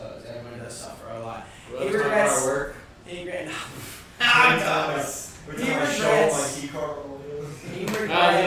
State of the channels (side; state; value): both; identical; correlation 1.00